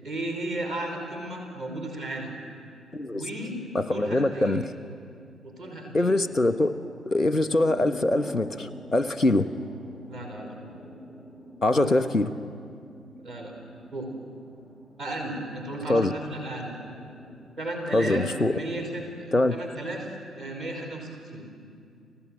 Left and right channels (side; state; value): both; normal; correlation 0.82